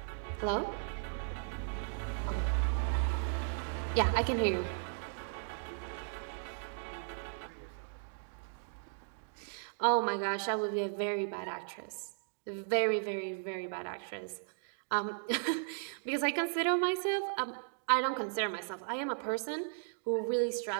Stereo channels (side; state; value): left; silent; digital silence